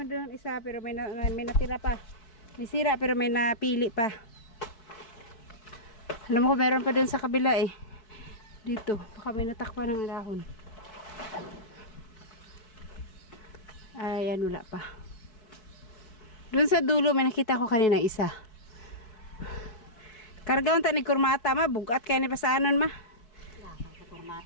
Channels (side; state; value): right; late; 4.6 ms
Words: doon isa pero may natira pa. May sira pero may napili pa. Alam mo ko meron pa doon sa kabila eh. Dito, baka may natakpan ng dahon. Ayan, wala pa. Doon sa dulo, may nakita ko kanina isa. Kargaon ta ni kurmata ma, bugat kaya ni pasanon ma. Lakang sa